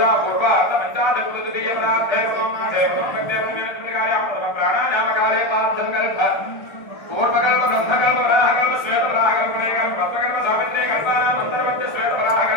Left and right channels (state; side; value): late; right; 1.3 ms